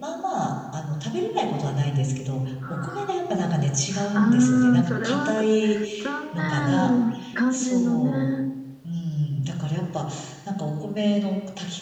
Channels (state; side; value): identical; both; correlation 1.00